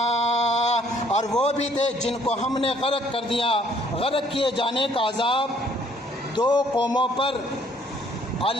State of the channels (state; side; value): normal; both; correlation 0.62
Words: اور وہ بھی تھے جن کو ہم نے غرق کر دیا۔ غرق کیے جانے کا عذاب دو قوموں پر